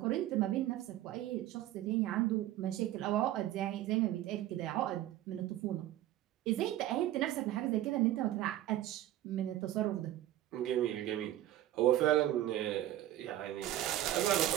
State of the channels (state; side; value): quieter; left; 13.6 dB